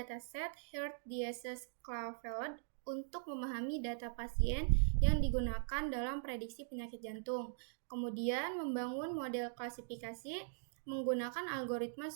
Heart Disease Claveled untuk memahami data pasien yang digunakan dalam prediksi penyakit jantung. Kemudian membangun model klasifikasi menggunakan algoritma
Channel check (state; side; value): silent; left; digital silence